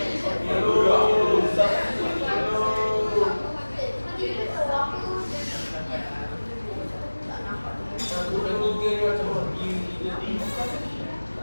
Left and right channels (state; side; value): inverted; both; correlation -1.00